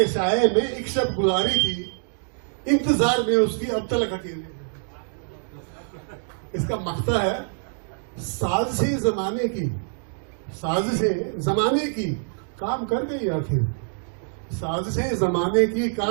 साए में एक शब गुजारी थी, इंतजार में उसकी अब तक अकेले। इसका मकता है साजिशें जमाने की काम कर गई आखिर, साजिशें जमाने की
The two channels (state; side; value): silent; left; 62 dB below the other